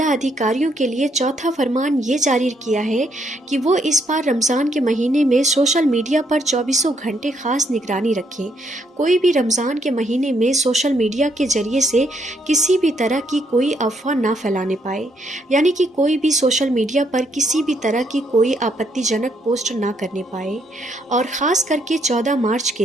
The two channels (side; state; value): both; normal; correlation 0.73